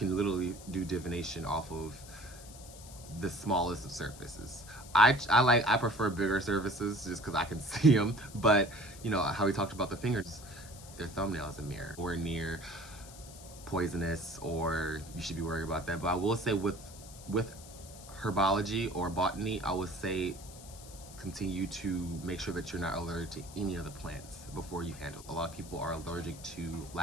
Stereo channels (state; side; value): noise; left; hiss, 17 dB below the sound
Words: literally do divination off of the smallest of surfaces. I prefer bigger surfaces just because I can see them, but you know how we talked about the fingers, their thumbnail is a mirror or near poisonous, or you should be worried about that. But I will say with herbology or botany, I would say continue to make sure that you're not allergic to any of the plants before you handle. A lot of people are allergic to